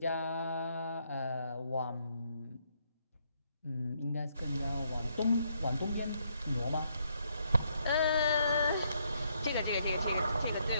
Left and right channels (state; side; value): inverted; both; correlation -0.73